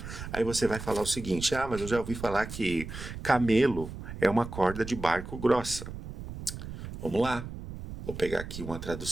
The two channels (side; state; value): right; noise; rumble, 10 dB below the sound